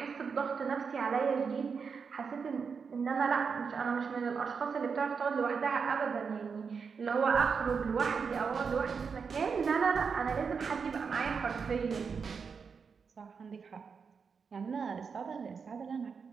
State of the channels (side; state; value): left; quieter; 5.7 dB